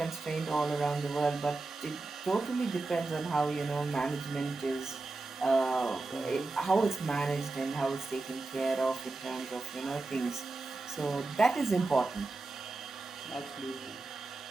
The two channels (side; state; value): left; quieter; 3.4 dB